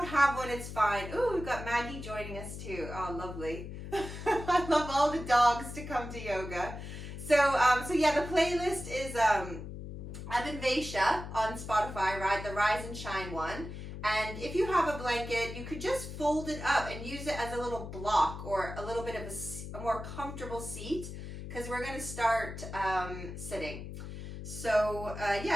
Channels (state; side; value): noise; left; hum, 9 dB below the sound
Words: have one, it's fine. Ooh, we've got Maggie joining us too. Oh, lovely. I love all the dogs to come to yoga. So yeah, the playlist is Abhinivesha on Spotify, right? The Rise and Shine one. And if you have a blanket, you could just fold it up and use it as a little block or a little bit of a more comfortable seat, because we're going to start sitting. So